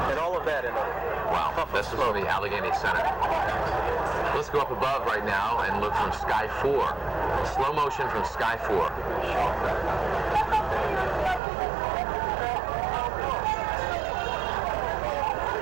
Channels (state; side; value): drops out; left; at 11.4 s